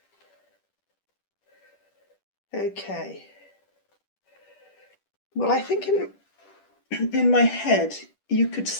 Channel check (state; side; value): late; right; 10 ms